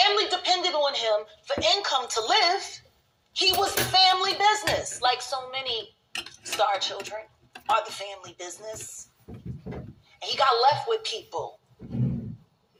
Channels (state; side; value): identical; both; correlation 1.00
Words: depended on him for income to live. He was the family business, like so many star children are the family business. And he got left with people.